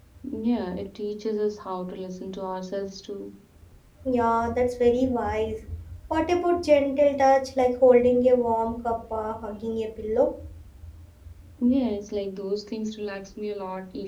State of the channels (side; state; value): both; identical; correlation 1.00